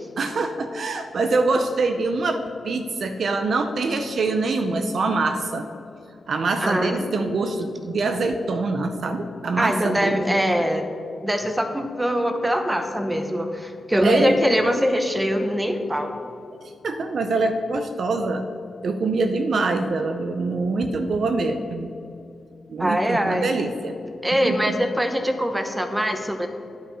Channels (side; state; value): both; normal; correlation 0.89